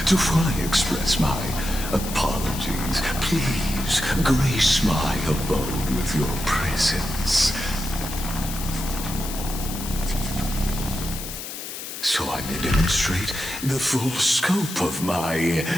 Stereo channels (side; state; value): left; noise; hiss, 9 dB below the sound